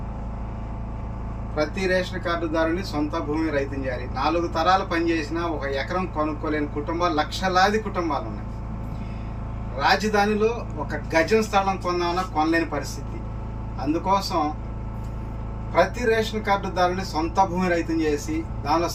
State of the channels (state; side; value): identical; both; correlation 1.00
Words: ప్రతి రేషన్ కార్డుదారుని సొంత భూమి రైతం చేయాలి. 4 తరాలు పనిచేసిన 1 ఎకరం కొనుక్కోలేని కుటుంబాలు, లక్షలాది కుటుంబాలు ఉన్నాయి. రాజధానిలో 1 గజం స్థలం కొందామన్నా కొనలేని పరిస్థితి. అందుకోసం ప్రతి రేషన్ కార్డుదారుని సొంత భూమి రైతం చేసి దానిలో